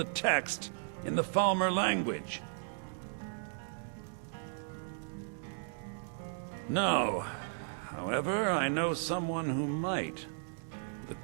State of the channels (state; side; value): silent; left; digital silence